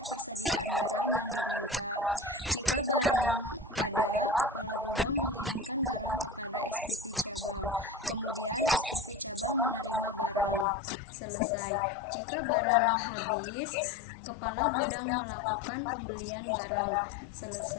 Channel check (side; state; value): right; drops out; at 10.7 s